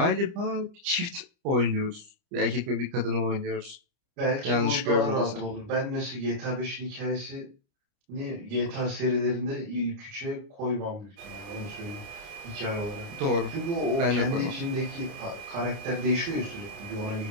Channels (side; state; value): left; late; 30 ms